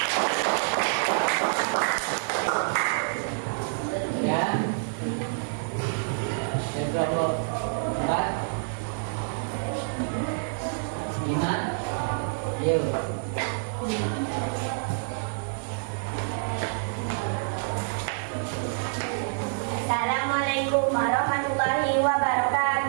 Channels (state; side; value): silent; left; digital silence